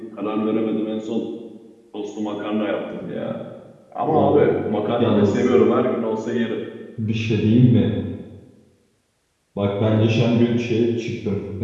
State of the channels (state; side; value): identical; both; correlation 1.00